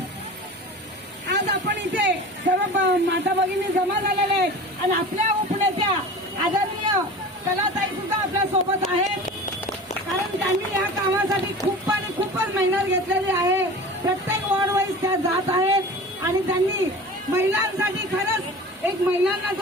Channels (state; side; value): normal; both; correlation 0.36